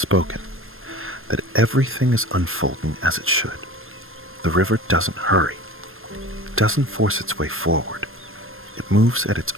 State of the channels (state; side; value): late; left; 0.60 ms